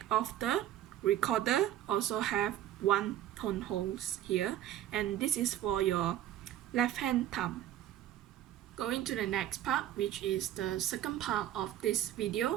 of the recorder also have 1 tone holes here, and this is for your left hand thumb. Going to the next part, which is the second part of this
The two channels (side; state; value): left; quieter; 12.2 dB